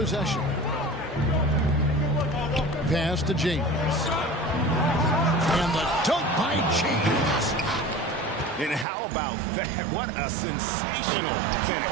Pass to James. And the dunk by James. And how about that? What a sensational finish.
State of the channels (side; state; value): left; drops out; at 8.8 s